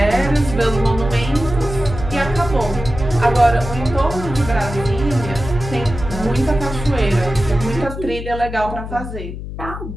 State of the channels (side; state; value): left; noise; hum, 9 dB below the sound